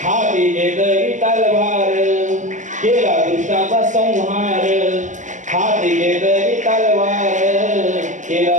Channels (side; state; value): left; late; 0.36 ms